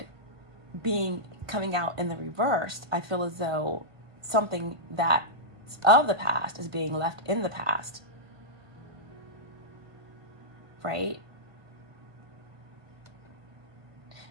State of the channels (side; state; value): left; late; 1.5 ms